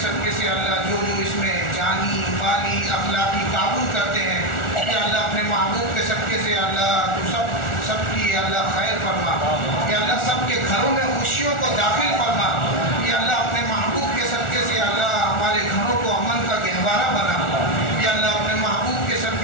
صدقے سے اللہ جو اس میں جانی مالی اخلاقی تعاون کرتے ہیں یا اللہ اپنے محبوب کے صدقے سے اللہ تو سب کی اللہ خیر فرما. یا اللہ سب کے گھروں میں خوشیوں کو داخل فرما. یا اللہ اپنے محبوب کے صدقے سے اللہ ہمارے گھروں کو امن کا گہوارہ بنا. یا اللہ اپنے محبوب کے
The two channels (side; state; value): right; late; 1.4 ms